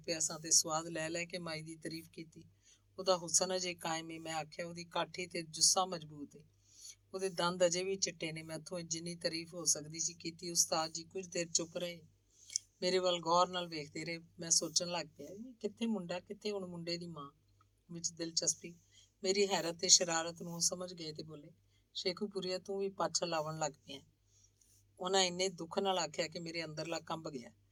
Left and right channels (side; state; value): both; identical; correlation 1.00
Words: ਪਿਆ ਸਾਂ ਤੇ ਸਵਾਦ ਲੈ ਲੈ ਕੇ ਮਾਈ ਦੀ ਤਾਰੀਫ ਕੀਤੀ। ਉਹਦਾ ਹੁਸਨ ਅਜੇ ਕਾਇਮ ਏ। ਮੈਂ ਆਖਿਆ, ਉਹਦੀ ਕਾਠੀ ਤੇ ਜੁੱਸਾ ਮਜ਼ਬੂਤ ਏ, ਉਹਦੇ ਦੰਦ ਅਜੇ ਵੀ ਚਿੱਟੇ ਨੇ। ਮੈਥੋਂ ਜਿੰਨੀ ਤਾਰੀਫ ਹੋ ਸਕਦੀ ਸੀ ਕੀਤੀ। ਉਸਤਾਦ ਜੀ ਕੁਝ ਦੇਰ ਚੁੱਪ ਰਹੇ, ਮੇਰੇ ਵੱਲ ਗੌਰ ਨਾਲ ਵੇਖਦੇ ਰਹੇ। ਮੈਂ ਸੋਚਣ ਲੱਗ ਪਿਆ, ਕਿੱਥੇ ਮੁੰਡਾ, ਕਿੱਥੇ ਹੁਣ ਮੁੰਡੇ ਦੀ ਮਾਂ ਵਿੱਚ ਦਿਲਚਸਪੀ। ਮੇਰੀ ਹੈਰਤ ਤੇ ਸ਼ਰਾਰਤ ਨੂੰ ਸਮਝ ਗਏ ਤੇ ਬੋਲੇ, ਸ਼ੇਖੂਪੁਰੀਆ ਤੂੰ ਵੀ ਪਾਛਾ ਲਾਵਣ ਲੱਗ ਪਿਆ। ਉਹਨਾਂ ਇੰਨੇ ਦੁੱਖ ਨਾਲ ਆਖਿਆ ਕਿ ਮੇਰੇ ਅੰਦਰਲਾ ਕੰਬ ਗਿਆ।